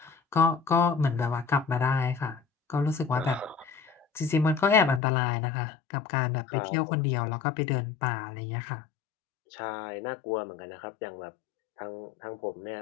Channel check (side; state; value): right; drops out; at 5.0 s